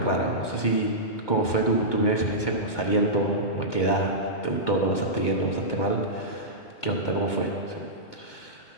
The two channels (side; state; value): right; late; 2.2 ms